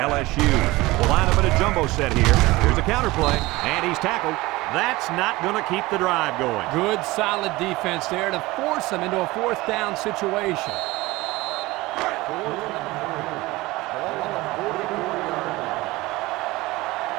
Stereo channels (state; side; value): quieter; left; 20.2 dB